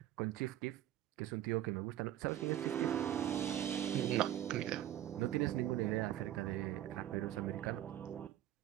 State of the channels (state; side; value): quieter; left; 12.6 dB